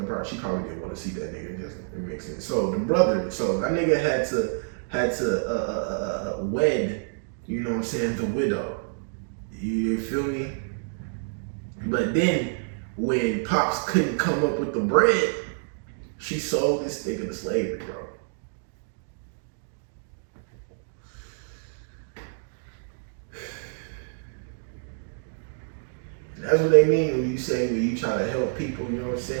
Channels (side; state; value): left; silent; digital silence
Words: she probably didn't want to see that nigga. It makes sense. So the brother, so that nigga had to wed, you know what I'm saying, the widow. You feel me? But then when Pops couldn't come up with the bread, she sold this nigga to slavery, bro. That's what they mean when you say, when you try to help people, you know what I'm